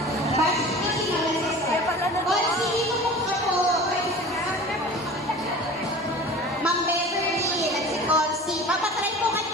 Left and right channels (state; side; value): normal; both; correlation 0.39